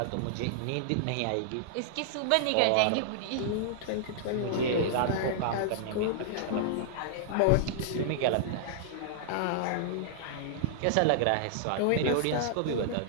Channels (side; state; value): both; different; correlation -0.01